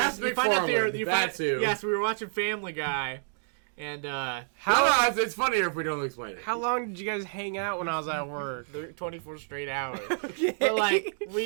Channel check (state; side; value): silent; left; digital silence